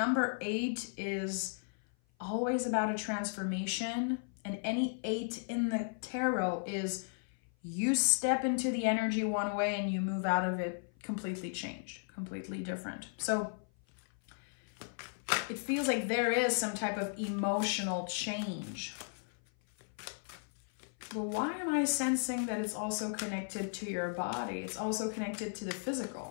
8 is always about a transformation, and any 8 in the tarot is you step into the energy one way and you move out of it completely changed, completely different. So it feels like there is some type of emotional change. But why am I sensing that it's also connected to your body? It's also connected to the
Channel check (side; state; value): right; silent; 54 dB below the other